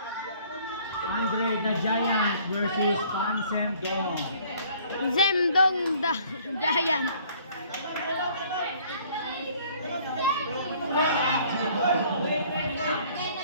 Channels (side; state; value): both; inverted; correlation -0.57